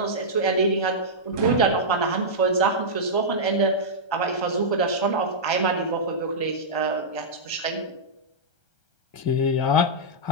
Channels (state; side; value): late; right; 1.3 ms